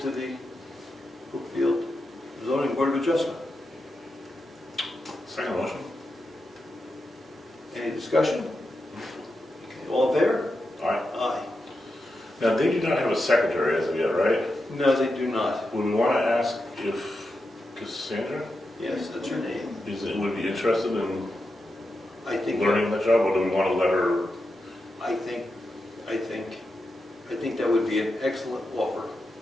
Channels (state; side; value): normal; both; correlation 0.88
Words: the Brookfield Zoning Board of Adjustment. Second motion. Any discussion? Okay, all in favor? Aye. Aye. Now, they do not have a secretary as of yet, right? No, they do not. Would we want to ask if Cassandra Yes, that's her name. would be interested in I think. learning the job, or do we want to let her? I think that would be an excellent offer.